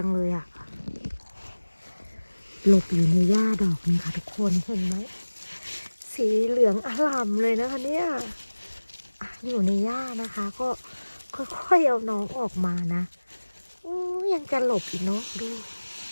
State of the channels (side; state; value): both; inverted; correlation -1.00